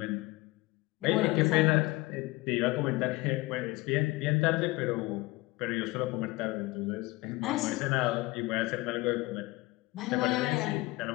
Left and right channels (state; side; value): quieter; right; 21.2 dB